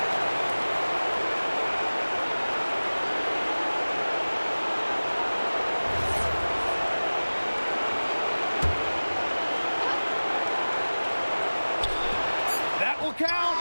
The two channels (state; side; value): inverted; both; correlation -1.00